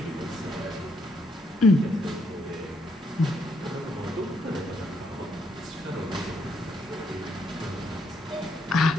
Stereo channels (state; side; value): normal; both; correlation 0.74